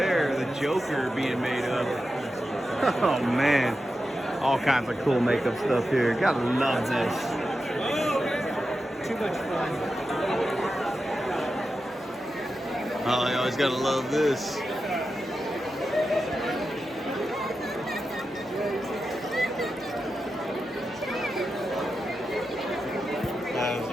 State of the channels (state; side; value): normal; both; correlation 0.90